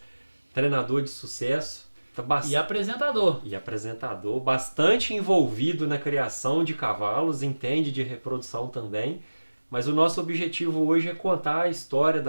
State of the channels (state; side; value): inverted; both; correlation -1.00